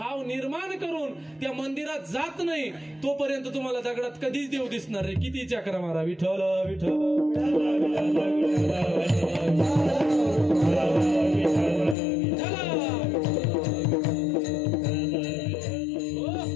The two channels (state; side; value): drops out; right; at 12.0 s